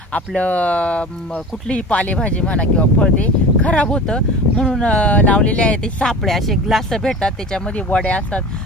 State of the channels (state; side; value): normal; both; correlation 0.36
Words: आपलं कुठलीही पालेभाजी म्हणा किंवा फळ ते खराब होतं। म्हणून लावलेले आहे ते सापळे, असे ग्लास भेटतात, त्याच्यामध्ये वड्या असतात,